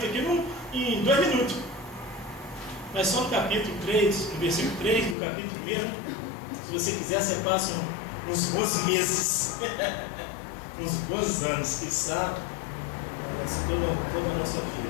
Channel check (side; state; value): right; drops out; at 5.2 s